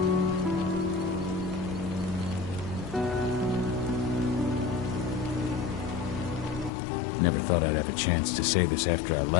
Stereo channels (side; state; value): right; drops out; at 6.7 s